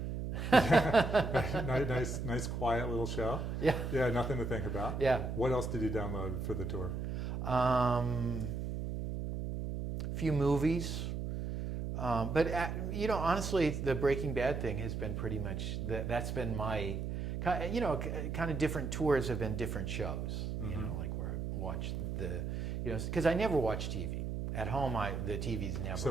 nice, quiet little show. Yeah. Yeah, nothing to think about. Yeah. What else did you download for the tour? Few movies. But, you know, honestly, the Breaking Bad thing has been pretty much, that's been my, you know, kind of different tours have been different shows. You know, like where I watch the, you know, because I never watch TV. At home, the TV's never.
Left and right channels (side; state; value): right; noise; hum, 3 dB below the sound